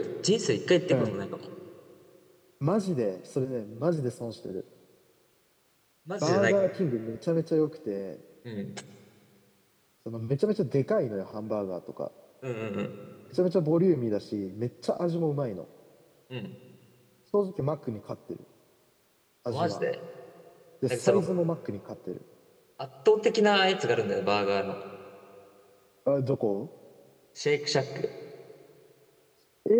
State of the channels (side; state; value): both; identical; correlation 1.00